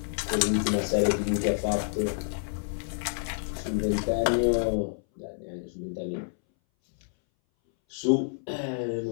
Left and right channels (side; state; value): right; silent; 59 dB below the other